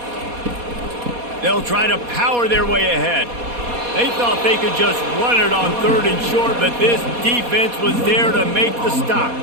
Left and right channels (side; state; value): left; late; 4.2 ms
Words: They'll try to power their way ahead. They thought they could just run it on 3rd and short, but this defense was there to make the stop.